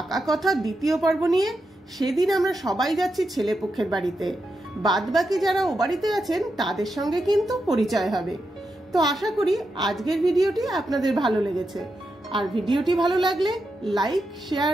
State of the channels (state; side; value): normal; both; correlation 0.86